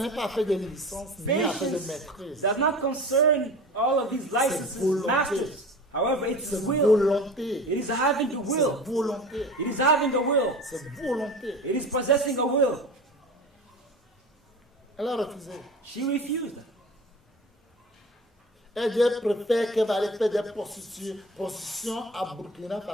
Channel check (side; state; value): both; normal; correlation 0.35